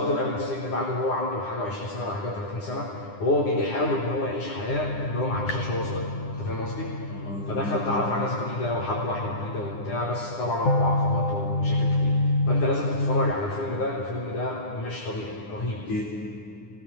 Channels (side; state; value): right; late; 9.8 ms